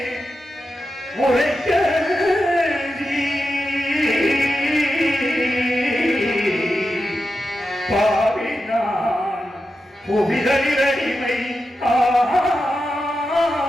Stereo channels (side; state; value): both; normal; correlation 0.89